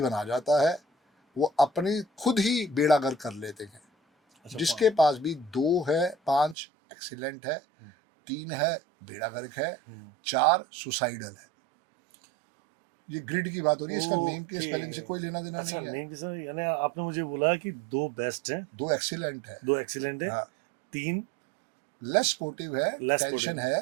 बना जाता है, वो अपनी खुद ही बेड़ा गर्क कर लेते हैं। अच्छा, जिसके पास भी 2 है, 5 एक्सीलेंट है, 3 है बेड़ा गर्क है, 4 सुसाइडल है। ये ग्रिड की बात हो रही है, इसका नेम के ओके। स्पेलिंग से कोई लेना देना अच्छा, नहीं है। नेम के साथ यानी आपने मुझे बोला कि 2 बेस्ट हैं, 2 एक्सीलेंट है, 2 एक्सीलेंट है, हाँ, 3 लेस स्पोर्टिव है, Less टेंशन sportive।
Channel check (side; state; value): left; drops out; at 6.6 s